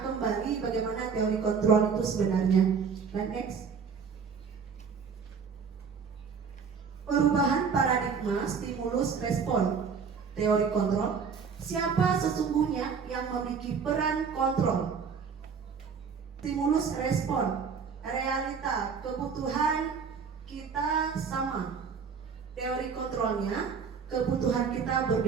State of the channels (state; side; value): quieter; left; 6.0 dB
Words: bagaimana teori kontrol itu sebenarnya. Dan next. Perubahan paradigma stimulus respon. Teori kontrol. Siapa sesungguhnya yang memiliki peran kontrol? Stimulus respon. Realita, kebutuhan kita sama. Teori kontrolnya, kebutuhan kita